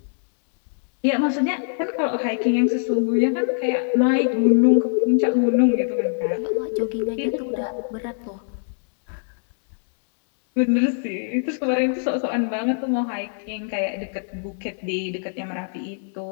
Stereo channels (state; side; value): silent; right; 63 dB below the other